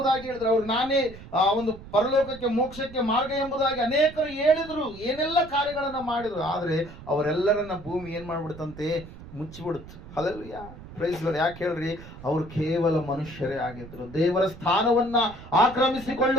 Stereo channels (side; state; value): right; noise; rumble, 16 dB below the sound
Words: ಹೇಳಿದ್ರು, ಅವ್ರು ನಾನೇ ಒಂದು ಪರಲೋಕಕ್ಕೆ ಮೋಕ್ಷಕ್ಕೆ ಮಾರ್ಗ ಎಂಬುದಾಗಿ ಅನೇಕರು ಹೇಳಿದ್ರು, ಏನೆಲ್ಲ ಕಾರ್ಯಗಳನ್ನ ಮಾಡಿದ್ರು. ಆದ್ರೆ ಅವರೆಲ್ಲರನ್ನ ಭೂಮಿ ಏನ್ ಮಾಡ್ಬಿಡ್ತಂತೆ? ಮುಚ್ಚಿಬಿಡುತ್ತೆ. ಹಲ್ಲೆಲೂಯಾ. Praise Lord. ಯಾಕೆ ಹೇಳ್ರಿ? ಅವರು ಕೇವಲ ಮನುಷ್ಯರೇ ಆಗಿದ್ರು, ದೇವರ ಸ್ಥಾನವನ್ನ